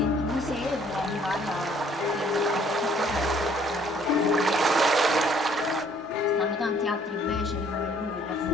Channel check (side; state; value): both; normal; correlation 0.60